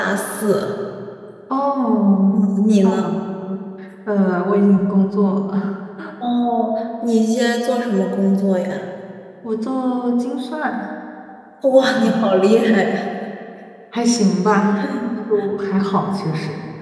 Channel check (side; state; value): both; identical; correlation 1.00